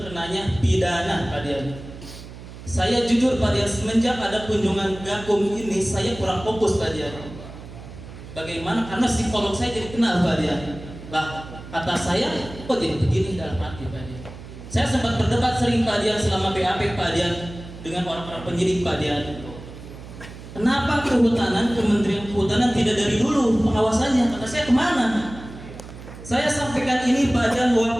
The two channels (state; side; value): noise; right; hum, 15 dB below the sound